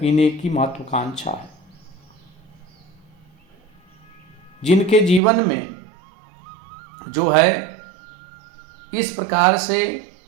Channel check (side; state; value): left; drops out; at 5.2 s